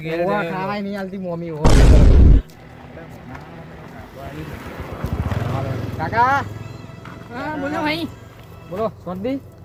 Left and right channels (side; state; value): both; identical; correlation 1.00